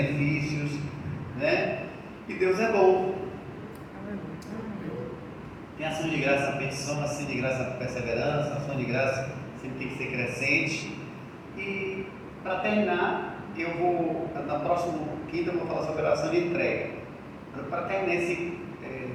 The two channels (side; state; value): both; identical; correlation 1.00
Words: né? E Deus é bom. Tem ação de graça na petição, ação de graça na perseverança, ação de graça sempre tem que ser crescente. E para terminar, eu vou, na próxima quinta, eu vou falar sobre a oração de entrega. Para terminar esse